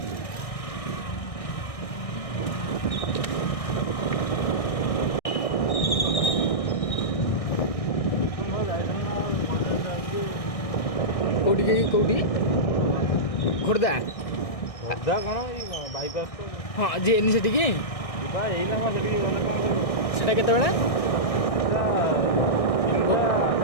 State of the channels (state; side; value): late; right; 1.6 ms